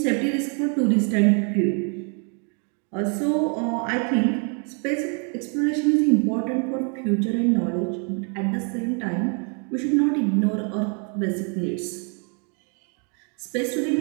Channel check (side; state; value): left; quieter; 39.0 dB